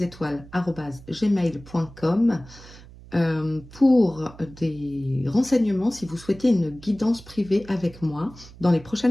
étoiles, @gmail.com. Pour des renseignements, si vous souhaitez une guidance privée avec moi dans les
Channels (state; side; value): noise; right; hum, 20 dB below the sound